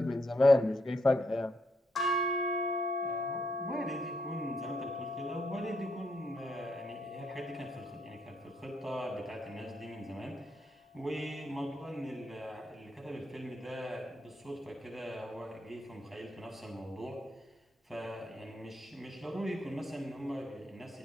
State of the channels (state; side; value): normal; both; correlation 0.77